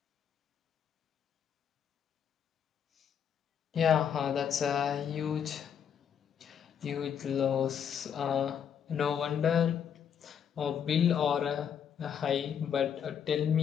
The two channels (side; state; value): right; quieter; 8.2 dB